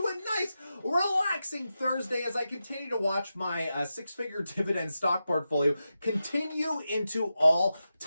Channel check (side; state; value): both; inverted; correlation -0.91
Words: a nice, relaxing Thursday as I continue to watch my six-figure dividend stock portfolio continue into